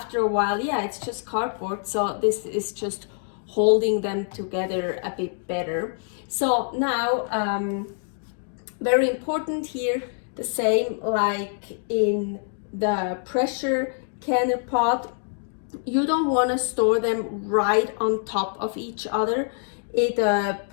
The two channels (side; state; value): right; silent; 61 dB below the other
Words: a while, yeah, it's just cardboard, so this is just holding them together a bit better. So now very important here, the same like in the pressure canner pot, you don't want to store them right on top of each other. It